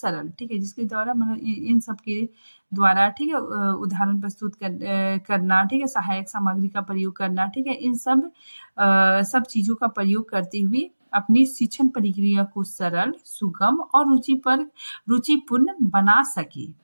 ठीक है, जिसके द्वारा मतलब इन सब के द्वारा, ठीक है, उदाहरण प्रस्तुत करना, ठीक है, सहायक सामग्री का प्रयोग करना, ठीक है, इन सब चीजों का प्रयोग करते हुए अपनी शिक्षण प्रक्रिया को सरल, सुगम और रुचिपूर्ण बना सके,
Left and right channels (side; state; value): both; inverted; correlation -1.00